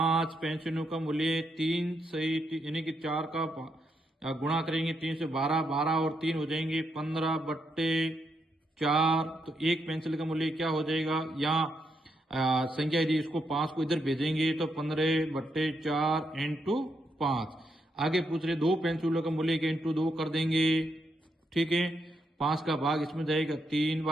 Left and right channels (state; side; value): normal; both; correlation 0.80